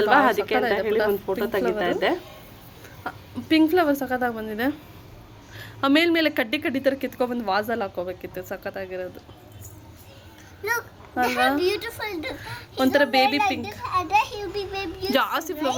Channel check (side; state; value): both; identical; correlation 1.00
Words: ಅದಕ್ಕೆ ಅಂತ ಹೇಳಿ ಒಂದು ಫೋಟೋ ತೆಗಿತಾ ಇದ್ದೆ. ಪಿಂಕ್ ಫ್ಲವರ್ ಸಕ್ಕತ್ತಾಗಿ ಬಂದಿದೆ. ಮೇಲ್ಮೇಲೆ ಕಡ್ಡಿ ಕಡ್ಡಿ ಥರ ಕಿತ್ಕೊಬಂದು ವಾಸಲ್ಲಿ ಹಾಕೋಬೇಕಿತ್ತು. ಸಕ್ಕತ್ತಾಗಿರೋದು ಅಲ್ವಾ? ಒಂಥರ ಬೇಬಿ ಪಿಂಕ್. ಜಾಸ್ತಿ